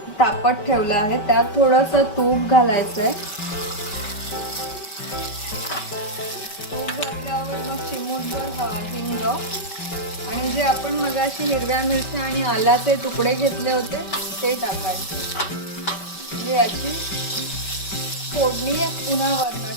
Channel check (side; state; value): right; late; 5.2 ms